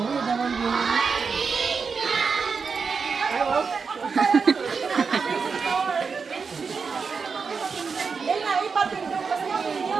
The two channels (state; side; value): quieter; left; 5.3 dB